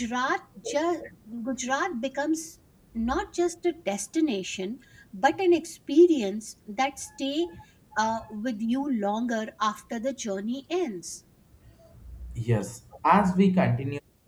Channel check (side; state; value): both; identical; correlation 1.00